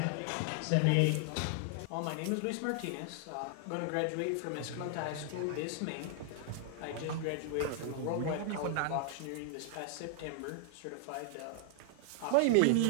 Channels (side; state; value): both; different; correlation 0.00